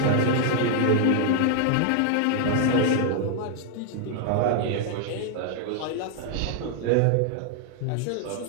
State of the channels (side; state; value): both; different; correlation 0.00